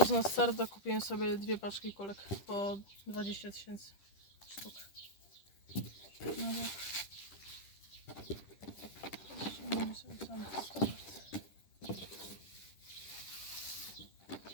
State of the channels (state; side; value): late; right; 10 ms